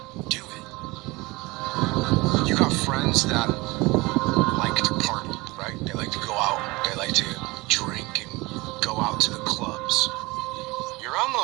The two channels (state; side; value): quieter; left; 23.0 dB